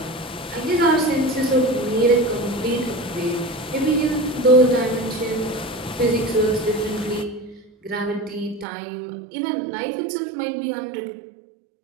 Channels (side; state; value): left; drops out; at 8.7 s